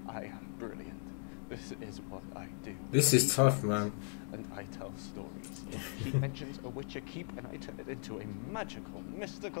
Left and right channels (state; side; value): silent; right; 52 dB below the other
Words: I am brilliant. This is what I do. This is tough, man. And I tell stories. He mentions a witcher keep, and I turn it into a magical,